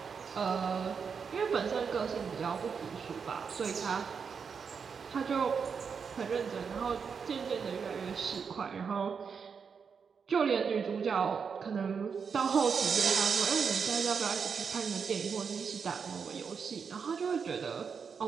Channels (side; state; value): left; quieter; 6.1 dB